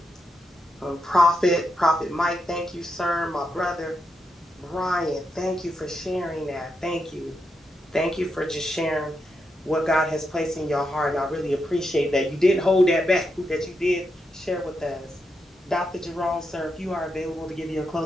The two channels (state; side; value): normal; both; correlation 0.84